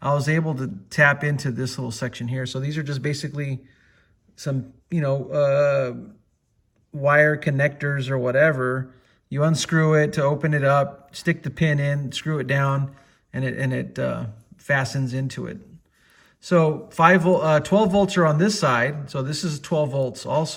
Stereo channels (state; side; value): identical; both; correlation 1.00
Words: I was able to tap into this little section here. So these are just basically some, wire connectors or whatever. You unscrew it to open it up, stick the pin in, screw it down, and it fastens into it. So 12 volts are on this side. So this is 12 volts